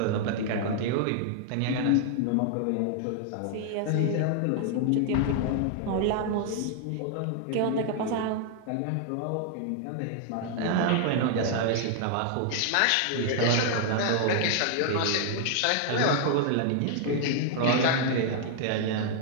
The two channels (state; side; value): different; both; correlation 0.00